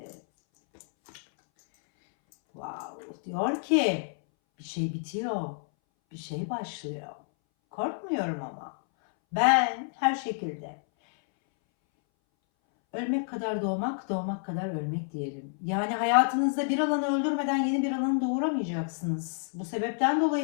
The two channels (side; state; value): right; silent; 58 dB below the other